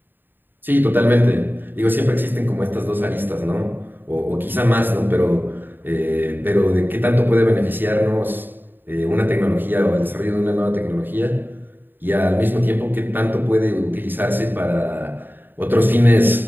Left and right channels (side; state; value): left; late; 0.093 ms